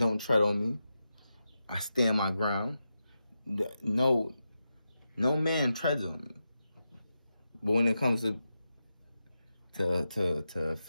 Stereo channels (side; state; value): both; inverted; correlation -0.89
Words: tread on me. I stand my ground. No man treads on me. But when it comes to